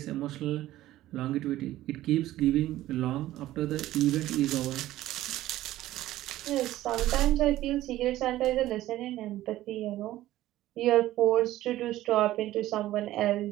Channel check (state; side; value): quieter; left; 15.0 dB